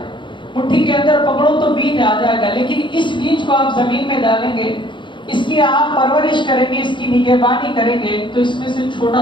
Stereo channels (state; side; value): late; right; 0.23 ms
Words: مٹھی کے اندر پکڑو تو بیج آ جائے گا، لیکن اس بیج کو آپ زمین میں ڈالیں گے، اس کی آپ پرورش کریں گے، اس کی نگہبانی کریں گے تو اس میں سے